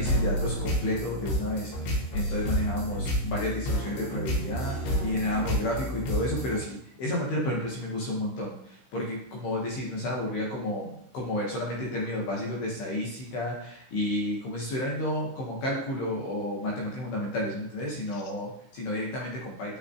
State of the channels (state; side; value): late; right; 15 ms